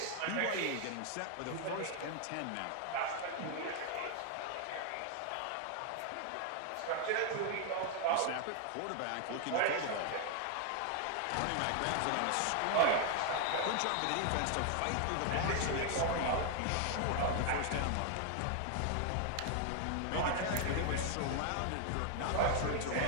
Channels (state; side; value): different; both; correlation 0.00